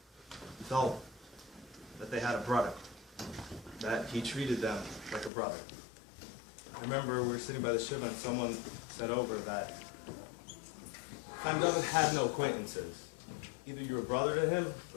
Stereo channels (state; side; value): drops out; right; at 5.3 s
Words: felt that they had a brother, that he treated them like a brother. I remember we were sitting by the Shiva and someone said over that Chaim David had no acquaintances. Either you were brother to him